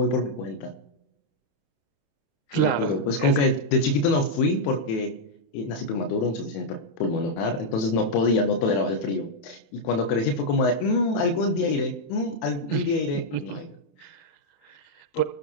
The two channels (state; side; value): late; right; 27 ms